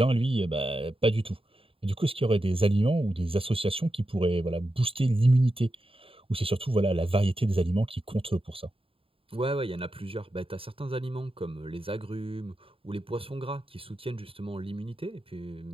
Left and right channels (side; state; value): left; late; 0.27 ms